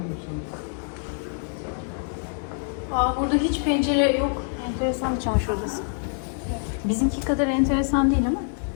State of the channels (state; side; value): silent; right; 61 dB below the other